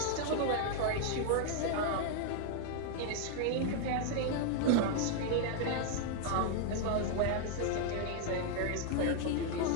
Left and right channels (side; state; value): both; different; correlation 0.00